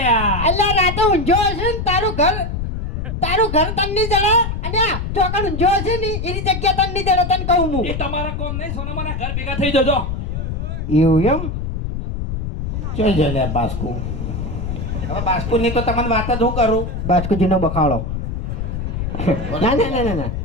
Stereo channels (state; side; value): noise; left; rumble, 4 dB below the sound